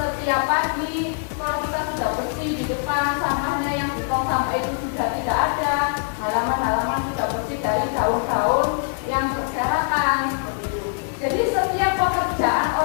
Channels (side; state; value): right; silent; 64 dB below the other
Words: pagi kalau kita sudah bersih di depan, sampahnya yang di tong sampah itu sudah tidak ada, halaman-halaman sudah bersih dari daun-daun yang berserakan seperti itu. Jadi setiap pekerjaan